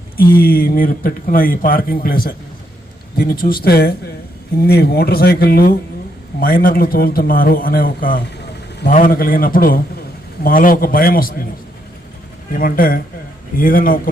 మీరు పెట్టుకున్న ఈ పార్కింగ్ ప్లేసే. దీన్ని చూస్తే ఇన్ని మోటార్ సైకిళ్ళు మైనర్లు తోలుతున్నారు అనే ఒక భావన కలిగినప్పుడు మాలో ఒక భయం వస్తుంది. ఏమంటే ఏదైనా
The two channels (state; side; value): normal; both; correlation 0.76